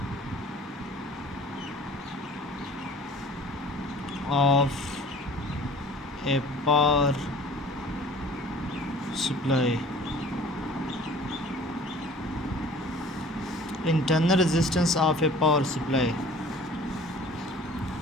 of A power supply. Internal resistance of A power supply.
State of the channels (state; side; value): normal; both; correlation 0.47